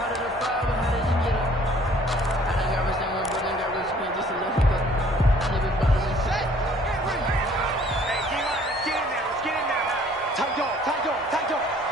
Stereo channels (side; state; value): both; normal; correlation 0.56